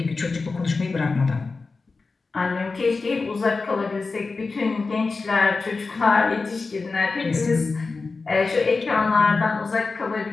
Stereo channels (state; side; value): quieter; right; 4.1 dB